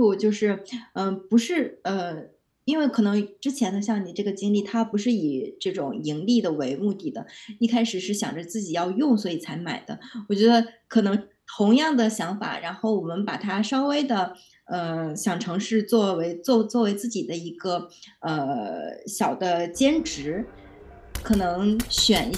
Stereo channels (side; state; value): both; identical; correlation 1.00